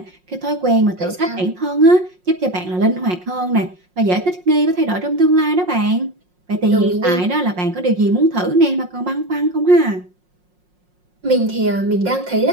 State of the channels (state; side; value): late; left; 5.5 ms